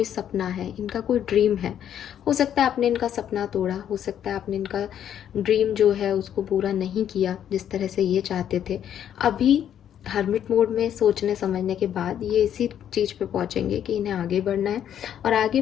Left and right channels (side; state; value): right; quieter; 9.8 dB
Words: सपना है, इनका कोई ड्रीम है। हो सकता है आपने इनका सपना तोड़ा, हो सकता है आपने इनका ड्रीम जो है उसको पूरा नहीं किया जिस तरह से ये चाहते थे। अभी हर्मिट मोड में सोचने समझने के बाद ये इसी चीज़ पे पहुंचेंगे कि इन्हें आगे बढ़ना है, और आगे